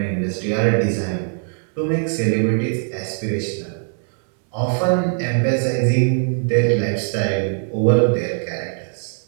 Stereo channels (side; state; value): left; silent; 60 dB below the other